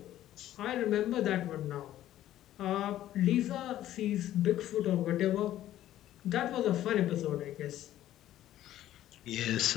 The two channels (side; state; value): right; quieter; 13.1 dB